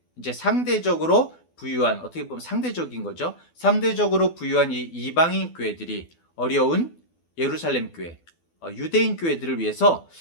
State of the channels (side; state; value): right; late; 12 ms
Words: 이제 상대적으로 부유한, 어떻게 보면 상대적인 거죠. 상대적으로 부유한 이 이방인 교회들이 어려운 예루살렘 교회, 유대인 교회들을 위해서